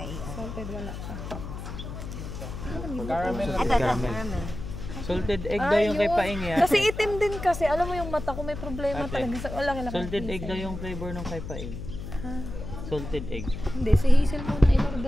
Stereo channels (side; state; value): left; noise; hum, 8 dB below the sound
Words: Salted wala pa. Ito, caramel. Salted egg daw yung kay Paing yan. Kasi itim din kasi. Alam mo yung mata ko may problema Ate. talaga. Wala ka lang. Salted egg daw yung flavor ng kay Paing. Salted egg. Hindi, si Hazel muna